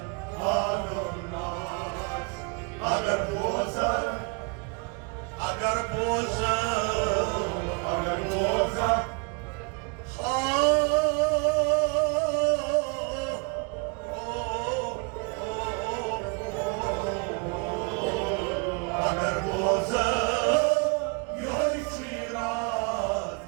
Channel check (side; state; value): left; quieter; 33.1 dB